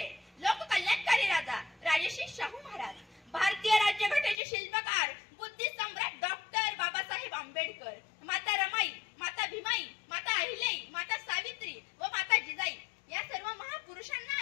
लोककल्याणकारी राजा राजर्षी शाहू महाराज, भारतीय राज्यघटनेचे शिल्पकार बुद्धी सम्राट डॉक्टर बाबासाहेब आंबेडकर, माता रमाई, माता भीमाई, माता अहिल्याई, माता सावित्री व माता जिजाई या सर्व महापुरुषांना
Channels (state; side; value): drops out; right; at 4.4 s